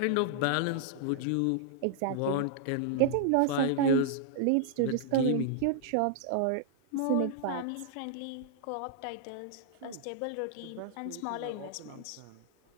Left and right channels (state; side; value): different; both; correlation -0.01